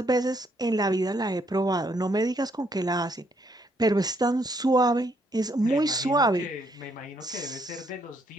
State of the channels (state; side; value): normal; both; correlation 0.71